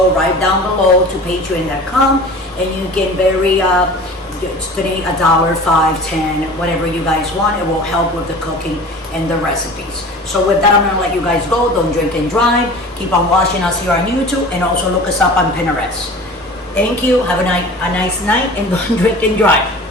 right down below to patreon.com and you can donate $1, $5, $10, whatever you guys want. It will help with the cooking and the recipes. So with that, I'm gonna let you guys go. Don't drink and drive. Keep on watching us here on YouTube and also look us up on Pinterest. Thank you. Have a nice night and don't drink and drive.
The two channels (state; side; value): normal; both; correlation 0.40